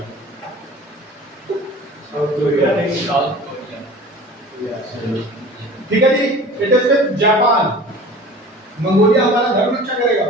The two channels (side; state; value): both; normal; correlation 0.41